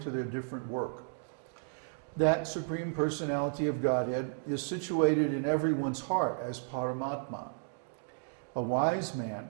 their different work. That Supreme Personality of Godhead is situated in everyone's heart as Paramatma. A wise man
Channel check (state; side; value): silent; left; digital silence